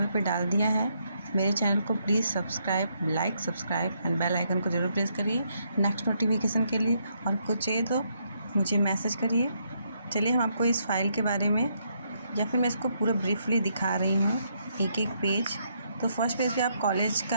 पे डाल दिया है। मेरे चैनल को please subscribe, like, subscribe and bell icon को ज़रूर प्रेस करिए नेक्स्ट नोटिफिकेशन के लिए, और कुछ चाहिए तो मुझे मैसेज करिए। चलिए हम आपको इस फाइल के बारे में, या फिर मैं इसको पूरा ब्रीफली दिखा रही हूँ एक एक पेज। तो फर्स्ट पेज पे आप कॉलेज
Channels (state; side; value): inverted; both; correlation -0.75